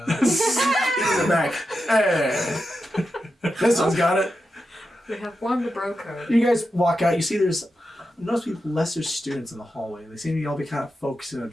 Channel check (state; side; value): normal; both; correlation 0.89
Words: guns. He's in the back. Hey. This one's got it. We have formed a bro code. You guys walk out. You see there's notice people lesser students in the hallway. They seem to all be kind of focused in a